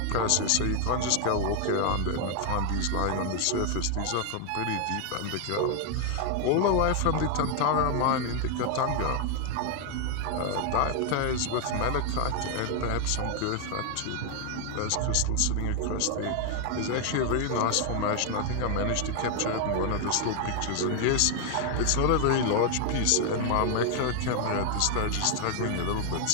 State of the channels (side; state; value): both; different; correlation 0.00